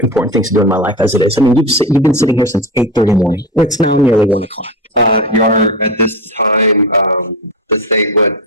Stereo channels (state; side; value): normal; both; correlation 0.21